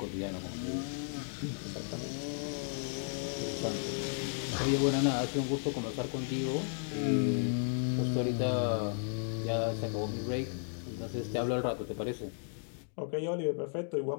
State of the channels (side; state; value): right; silent; digital silence